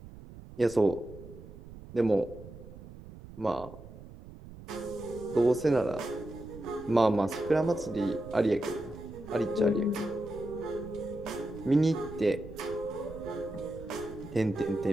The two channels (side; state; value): right; noise; rumble, 16 dB below the sound